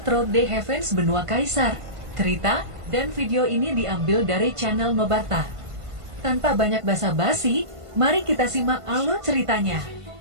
Through the Heavens Benua Kaisar. Cerita dan video ini diambil dari channel Nobarta. Tanpa banyak basa-basi, mari kita simak alur ceritanya.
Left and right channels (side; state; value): left; late; 1.5 ms